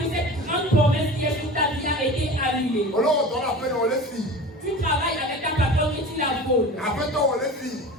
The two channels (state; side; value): normal; both; correlation 0.35